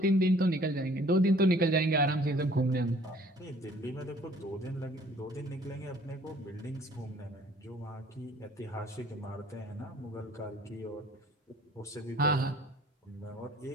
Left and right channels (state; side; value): normal; both; correlation 0.55